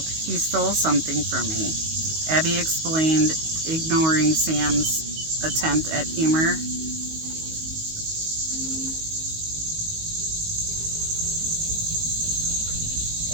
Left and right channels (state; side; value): late; left; 19 ms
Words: He stole something from me, Abby explained, ignoring Sam's attempt at humor.